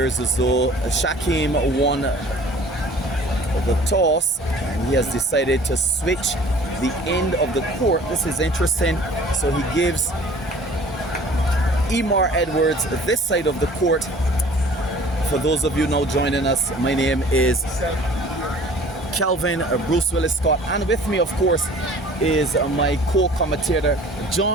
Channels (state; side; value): normal; both; correlation 0.49